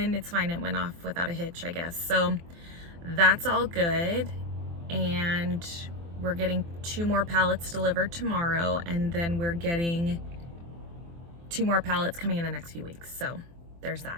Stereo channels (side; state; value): left; late; 24 ms